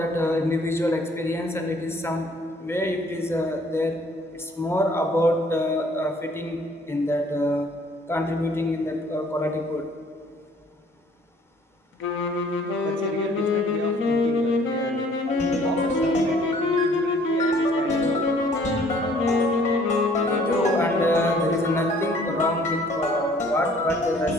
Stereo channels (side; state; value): both; normal; correlation 0.58